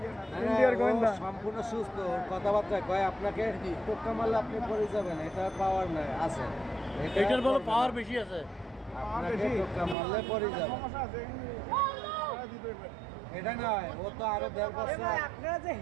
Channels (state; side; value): drops out; left; at 10.0 s